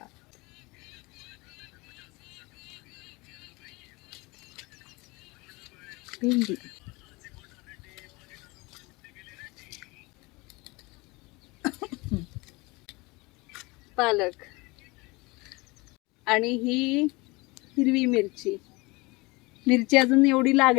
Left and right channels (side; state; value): right; quieter; 24.6 dB